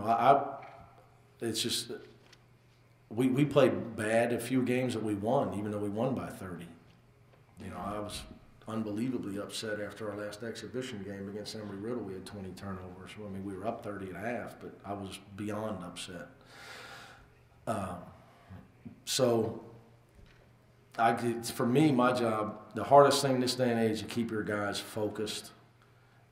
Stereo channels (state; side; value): identical; both; correlation 1.00